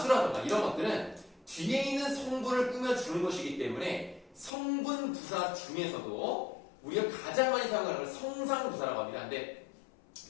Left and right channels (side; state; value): right; drops out; at 4.5 s